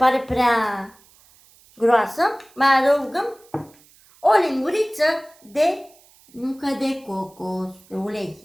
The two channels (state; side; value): noise; right; hiss, 28 dB below the sound